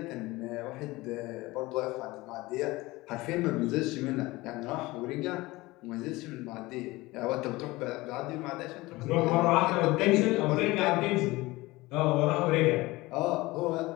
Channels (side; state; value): right; quieter; 20.5 dB